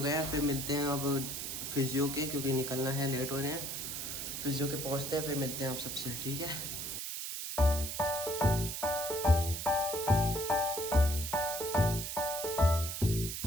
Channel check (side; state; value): right; noise; hiss, 5 dB below the sound